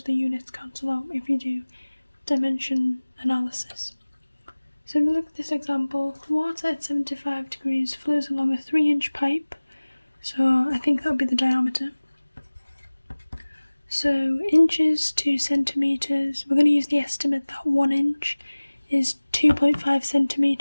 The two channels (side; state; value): both; inverted; correlation -1.00